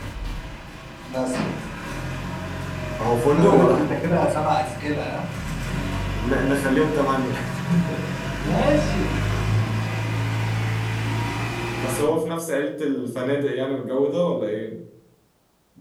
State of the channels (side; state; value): both; identical; correlation 1.00